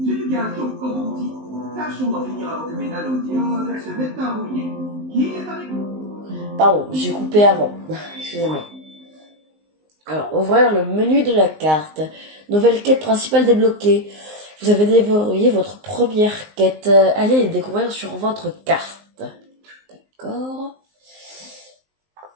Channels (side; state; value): left; late; 19 ms